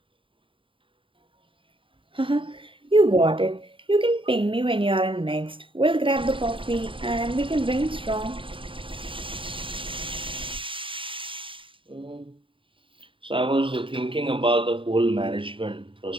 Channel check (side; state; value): left; late; 0.25 ms